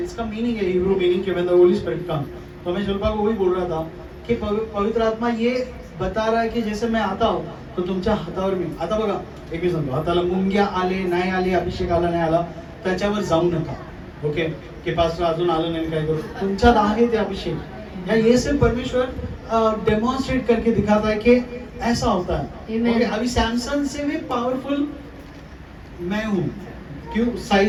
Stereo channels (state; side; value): identical; both; correlation 1.00